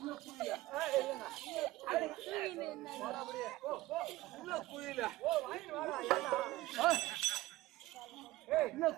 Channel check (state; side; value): quieter; left; 17.7 dB